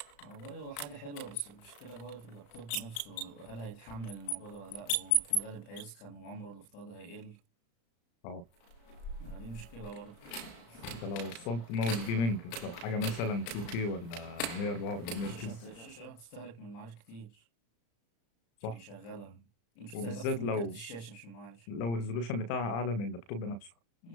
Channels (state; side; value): late; right; 35 ms